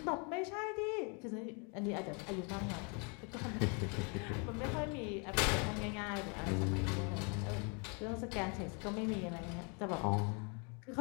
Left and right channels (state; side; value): quieter; right; 35.0 dB